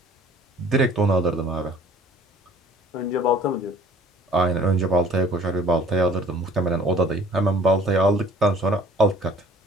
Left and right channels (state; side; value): normal; both; correlation 0.52